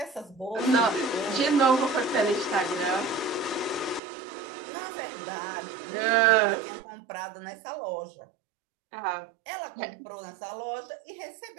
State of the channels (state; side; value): drops out; left; at 4.0 s